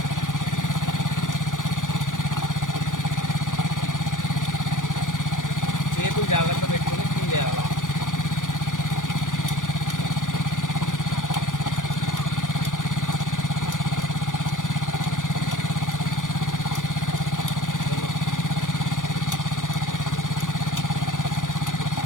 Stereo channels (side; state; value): right; late; 0.88 ms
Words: చేతులు జాగ్రత్త పెట్టుకుని క్లీన్ చేయాలా.